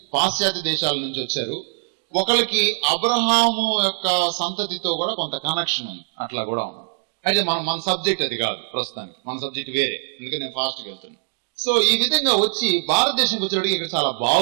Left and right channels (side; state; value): left; silent; digital silence